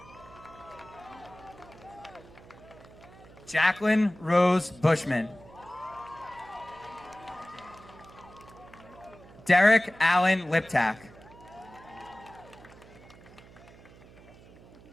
Jacqueline Rose Bushman. Derek Allen Liptak.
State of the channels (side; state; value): right; noise; hum, 21 dB below the sound